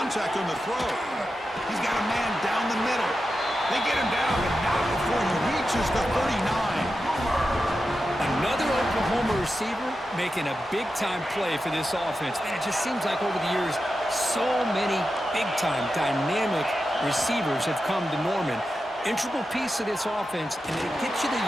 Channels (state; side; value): normal; both; correlation 0.90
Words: on the throw. He's got a man down the middle. They get him down, but not before he reaches the 39. Another Oklahoma receiver making a big-time play for this offense. Man, it just seems like over the years, so many big-time, dynamic receivers have come to Norman. Integral piece of this offense, and they get you the